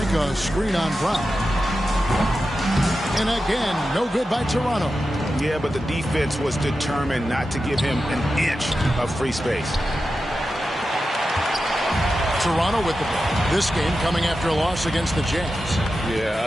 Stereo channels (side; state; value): both; normal; correlation 0.91